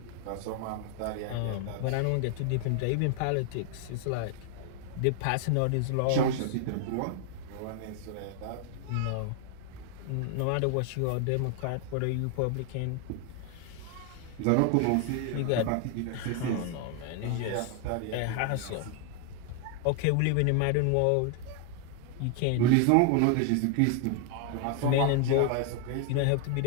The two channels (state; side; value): different; both; correlation 0.00